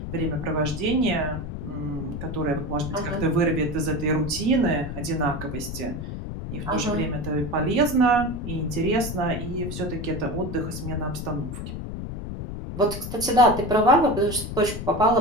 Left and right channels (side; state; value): left; noise; rumble, 7 dB below the sound